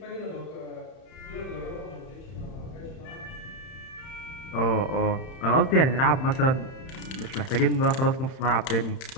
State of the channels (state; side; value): late; right; 31 ms